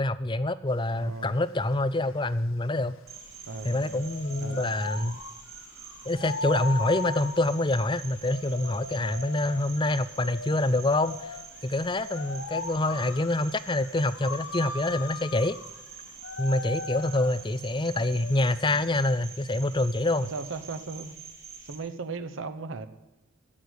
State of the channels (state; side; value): normal; both; correlation 0.59